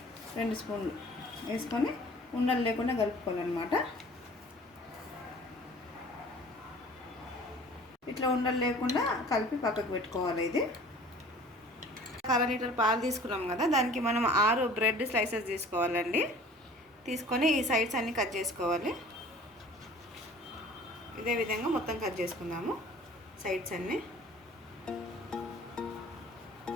2 స్పూన్లు వేసుకొని ఉండలు లేకుండా కలుపుకోవాలన్నమాట. ఇట్లా ఉండలు లేకుండా కలిపి పక్కకు పెట్టుకోవాలి. ఇది 1/2 లీటర్ పాలు తీసుకున్నాం కదా, దానికి మనం 6 బ్రెడ్ స్లైసెస్ తీసుకోవాలండి. తీసుకొని ఈ సైడ్స్ అన్నీ కట్ చేసుకోవాలి. ఇదే విధంగా మొత్తం కట్ చేసుకుందాము సైడ్స్ అన్నీ.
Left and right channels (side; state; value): both; normal; correlation 0.47